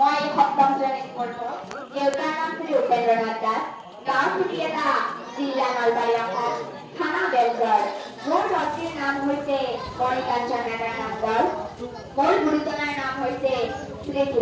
সপ্তম শ্ৰেণীত পঢ়ো। দেউতাৰ নাম শ্ৰী উপেন্দ্ৰনাথ দাস। গাঁও চুটিয়ালা, জিলা নলবাৰী অসম, থানা বেলগড়। মোৰ লক্ষ্মীৰ নাম হৈছে মণিকাঞ্চন নাডাৰ নামগড়। মোৰ গুৰুজনাৰ নাম হৈছে শ্ৰী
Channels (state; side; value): identical; both; correlation 1.00